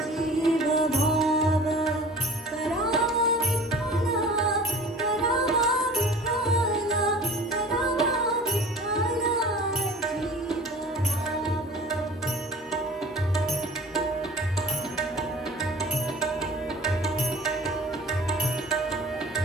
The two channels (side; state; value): both; normal; correlation 0.44